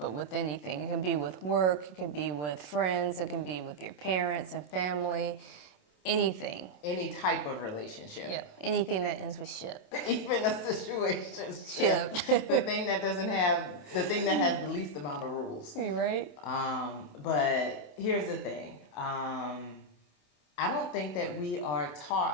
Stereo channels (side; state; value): right; late; 27 ms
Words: with anything. It can be with work, it can be with friends, it can be with your parents and family, anything. Any type of relationship. Yeah, anything that ends with ship. Even a situationship. Ship. the thing that has the least amount of rules. You right? But here's the thing. I don't think that we are